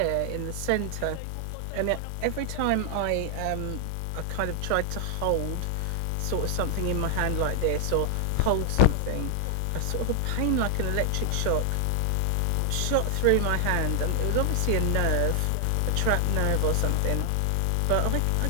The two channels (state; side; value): different; both; correlation 0.00